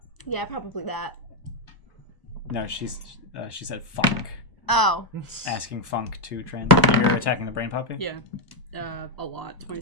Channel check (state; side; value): late; right; 1.0 ms